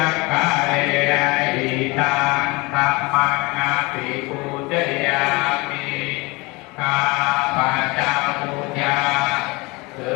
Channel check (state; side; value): quieter; right; 25.0 dB